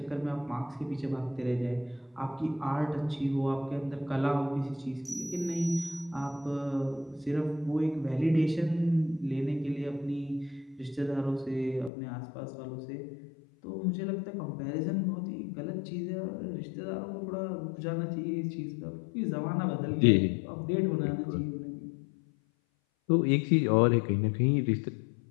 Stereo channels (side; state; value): right; drops out; at 11.9 s